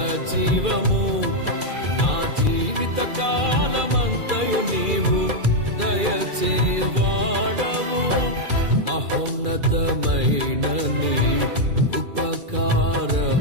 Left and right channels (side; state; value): left; late; 2.4 ms